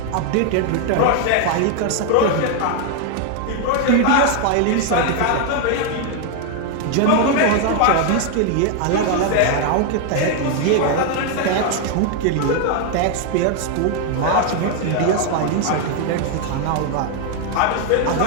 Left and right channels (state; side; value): different; both; correlation 0.00